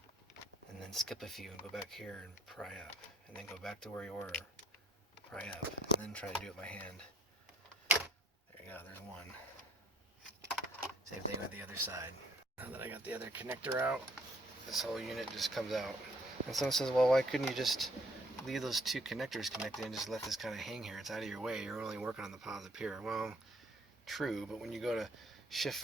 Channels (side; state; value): both; normal; correlation 0.61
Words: And then skip a few and go back here and pry up. And then go back to where you were, pry up, and then try to do it by hand. There you go, there's one. Same thing with the other side. Now that I got the other connector out, this whole unit just comes out. And someone says, well, why couldn't you just leave those 2 connectors connected and just let this kind of hang here? It's out of your way. You're only working on the positive here. Well, true, but when you go to shift